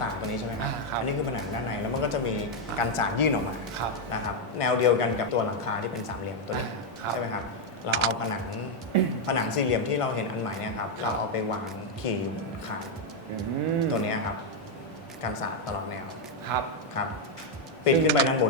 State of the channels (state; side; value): normal; both; correlation 0.01